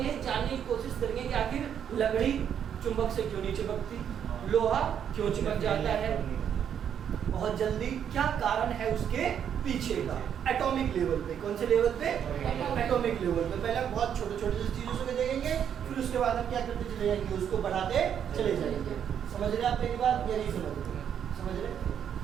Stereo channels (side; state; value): left; quieter; 8.7 dB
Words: जानने की कोशिश करेंगे कि आखिर लकड़ी चुंबक से क्यों नहीं चिपकती, लोहा क्यों चिपक जाता है बहुत जल्दी, क्या कारण है उसके पीछे का। एटॉमिक लेवल पे, कौन से लेवल पे? एटॉमिक लेवल पे। पहले हम बहुत छोटे छोटे चीजों से देखेंगे, फिर उसके बाद हम क्या करते चले जाएंगे, उसको बढ़ाते चले जाएंगे। समझ रहे आप मेरी बात या नहीं समझ रहे? समझ रहे?